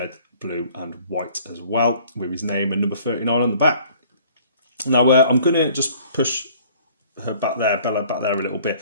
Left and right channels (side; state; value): both; inverted; correlation -0.54